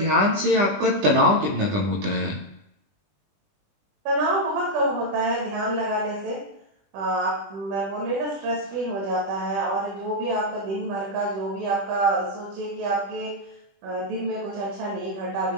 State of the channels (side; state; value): left; late; 20 ms